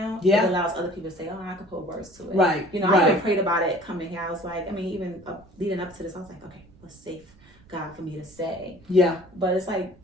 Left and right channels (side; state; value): right; noise; rumble, 26 dB below the sound